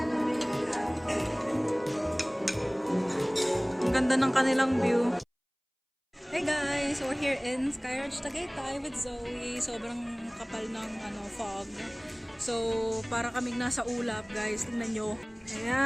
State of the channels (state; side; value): identical; both; correlation 1.00